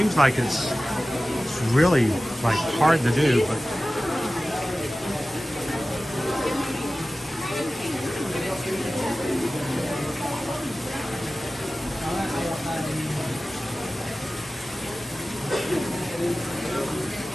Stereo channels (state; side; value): normal; both; correlation 0.96